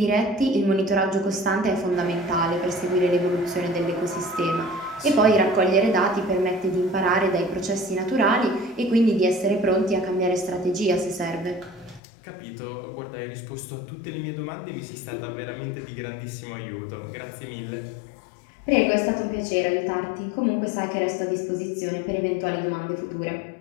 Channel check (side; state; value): right; drops out; at 12.0 s